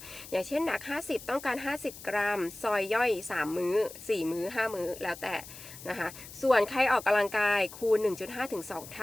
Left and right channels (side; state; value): left; noise; hiss, 15 dB below the sound